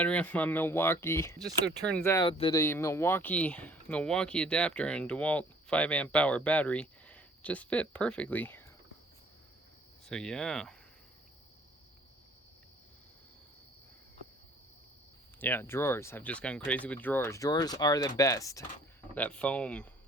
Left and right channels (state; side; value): normal; both; correlation 0.56